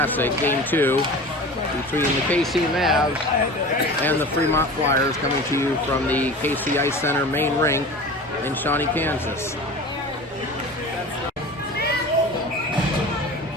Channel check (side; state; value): both; normal; correlation 0.36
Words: Game 2, between the KC Mavs and the Fremont Flyers, coming to you from the KC Ice Center main rink in Shawnee, Kansas.